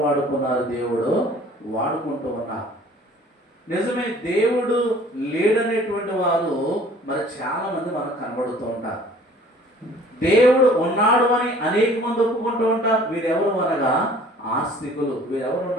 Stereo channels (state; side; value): normal; both; correlation 0.52